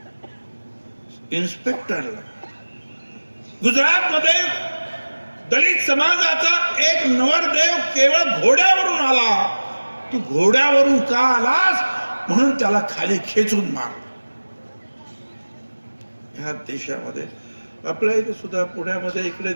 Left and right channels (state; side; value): inverted; both; correlation -1.00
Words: इन्स्पेक्टरला गुजरातमध्ये दलित समाजाचा एक नवरदेव केवळ घोड्यावरून आला, तू घोड्यावरून का आलास म्हणून त्याला खाली खेचून मार। ह्या देशामध्ये आपल्या इथे सुद्धा पुण्यामध्ये इकडे